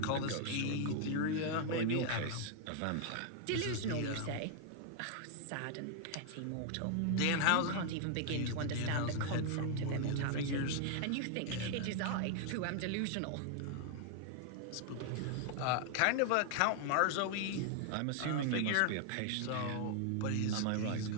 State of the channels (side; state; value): both; different; correlation 0.00